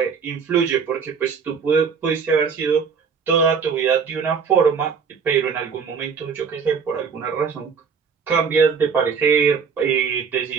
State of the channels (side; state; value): left; quieter; 6.1 dB